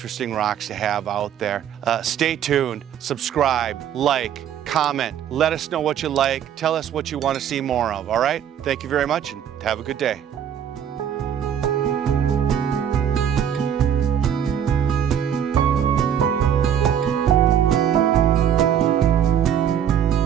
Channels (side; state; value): left; quieter; 9.1 dB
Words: rocks to have out there. Stay tuned, subscribe, like, comment, let us know what you like. Tell us what you want to see more of, all right? Thank you very much and have a good day.